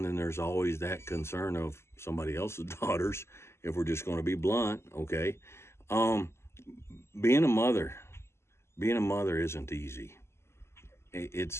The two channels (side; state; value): right; late; 0.13 ms